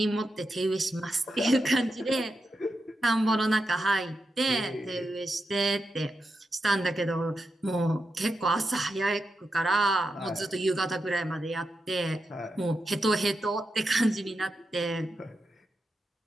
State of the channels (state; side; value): normal; both; correlation 0.87